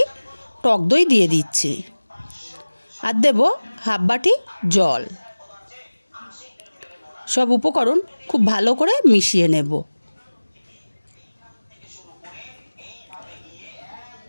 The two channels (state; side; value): inverted; both; correlation -1.00